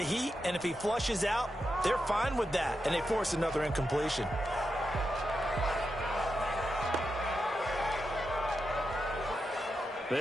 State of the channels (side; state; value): both; normal; correlation 0.87